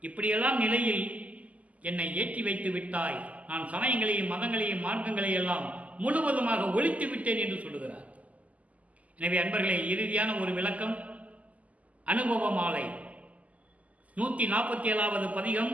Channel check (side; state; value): left; late; 0.072 ms